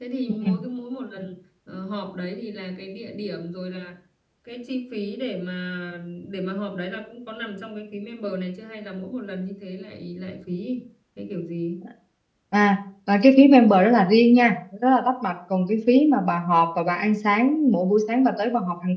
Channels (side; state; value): both; identical; correlation 1.00